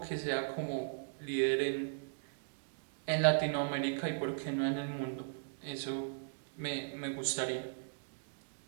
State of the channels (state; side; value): silent; left; digital silence